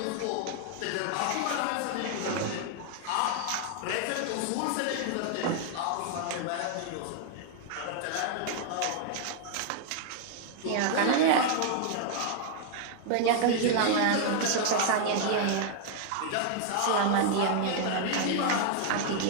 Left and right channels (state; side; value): different; both; correlation 0.00